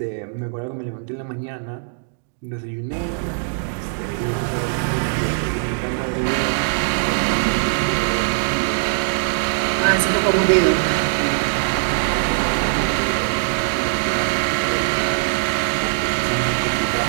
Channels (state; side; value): silent; left; digital silence